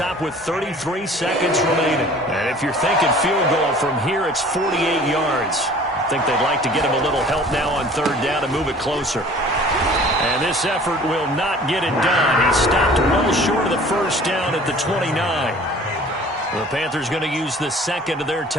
with 33 seconds remaining. And if you're thinking field goal from here, it's 48 yards. I think they'd like to get him a little help now on 3rd down and move it closer. And this effort will not get it done. He stopped well short of the first down at the 29. The Panthers going to use the 2nd of their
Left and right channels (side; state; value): both; normal; correlation 0.48